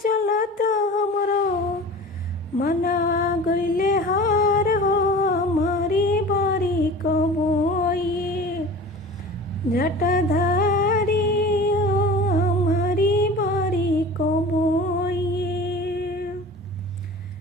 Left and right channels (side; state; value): both; normal; correlation 0.38